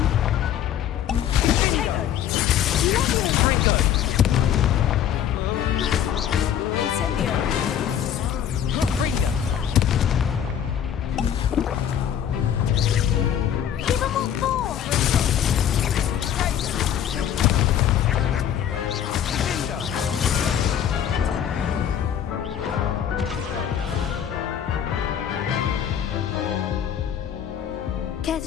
Potato. Levio. Confringo. Incendio. Confringo. Give them all four. Care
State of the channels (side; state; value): right; quieter; 9.6 dB